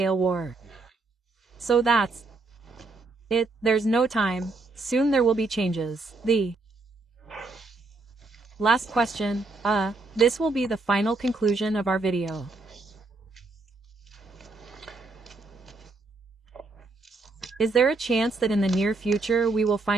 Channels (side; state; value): left; quieter; 3.5 dB